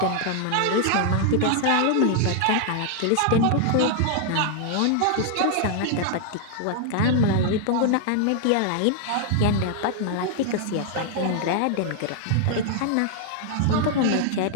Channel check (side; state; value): both; different; correlation 0.00